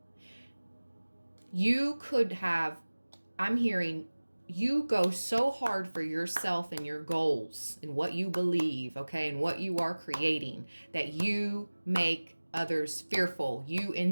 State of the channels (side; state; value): both; inverted; correlation -1.00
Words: You could have, I'm hearing, you go so hard for yourself and your goals and what you believe, okay, and what you are creating, that you make others fearful. You